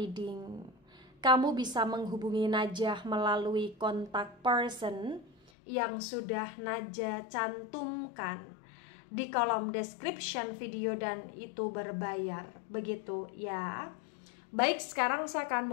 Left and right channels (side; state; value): right; drops out; at 5.5 s